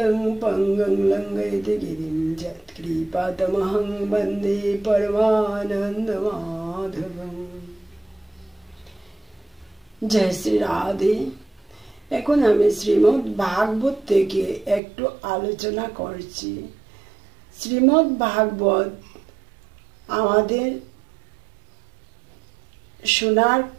पङ्गुं लङ्घयति गिरिं यत्कृपातमहं वन्दे परमानन्दमाधवम्। जय श्री राधे। এখন আমি শ্রীমদ্ ভাগবত থেকে একটু আলোচনা করছি। শ্রীমদ্ ভাগবত আমাদের শোনার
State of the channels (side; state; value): left; drops out; at 14.8 s